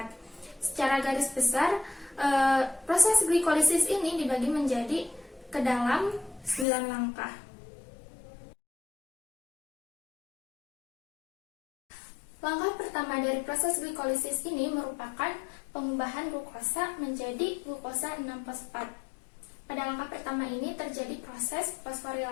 Secara garis besar, proses glikolisis ini dibagi menjadi ke dalam 9 langkah. Langkah pertama dari proses glikolisis ini merupakan pengubahan glukosa menjadi glukosa 6-fosfat. Pada langkah pertama ini terjadi proses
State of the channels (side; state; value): right; drops out; at 6.7 s